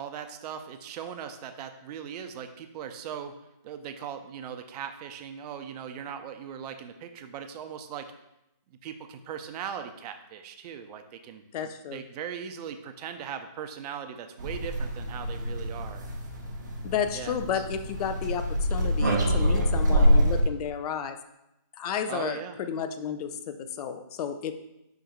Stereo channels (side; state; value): both; inverted; correlation -0.62